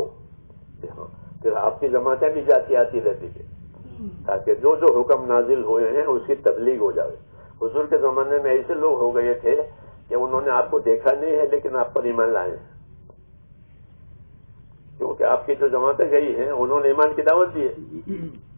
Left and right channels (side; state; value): both; inverted; correlation -1.00